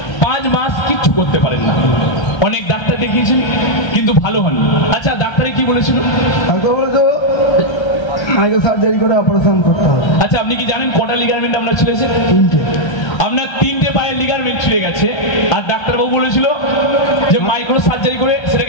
5 মাস কিচ্ছু করতে পারেন না, অনেক ডাক্তার দেখিয়েছেন কিন্তু ভালো হননি। আচ্ছা, ডাক্তারে কি বলেছিল? ডাক্তার বলেছে মাইক্রো সার্জারি করে অপারেশন করতে হবে। আচ্ছা, আপনি কি জানেন কটা লিগারমেন্ট আপনার ছিঁড়েছে? 3টে। আপনার 3টে পায়ের লিগারমেন্ট ছিঁড়ে গেছে, আর ডাক্তারবাবু বলেছিল যে মাইক্রো সার্জারি করে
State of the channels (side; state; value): right; late; 1.3 ms